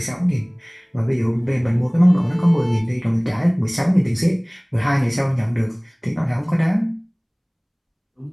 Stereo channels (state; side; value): identical; both; correlation 1.00